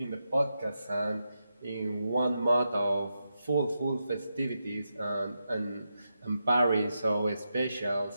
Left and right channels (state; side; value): inverted; both; correlation -0.87